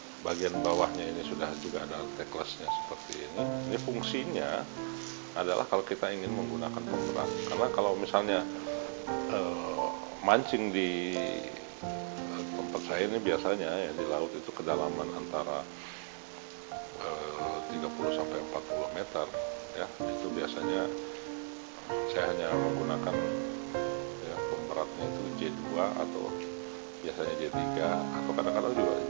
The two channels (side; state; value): left; silent; 54 dB below the other